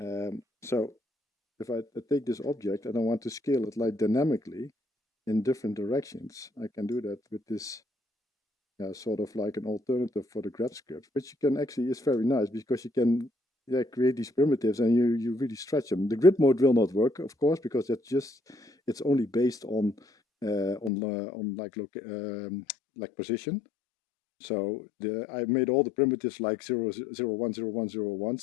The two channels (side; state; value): right; drops out; at 20.9 s